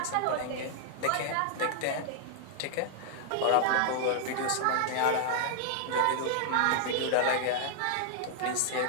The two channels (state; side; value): different; both; correlation -0.01